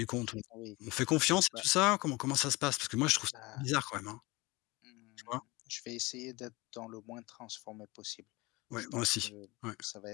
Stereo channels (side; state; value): right; quieter; 23.2 dB